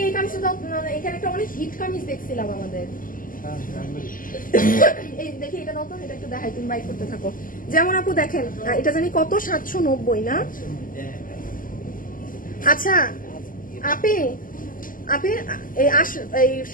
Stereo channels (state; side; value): late; right; 0.40 ms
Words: কামিজটা দাও। এখানে একটা অনেক হিট কামিজ দেখছিলাম আমাদের। এই দেখি, এটা দাও তো, এটা একটু দেখাই, তুমি বাইক করতে থাকো। যেমন আপু দেখেন, এটা জানি কত, 790 না? আচ্ছা আপনি এই